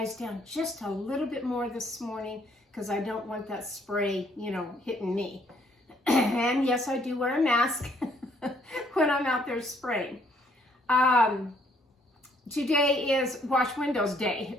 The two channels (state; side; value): normal; both; correlation 0.66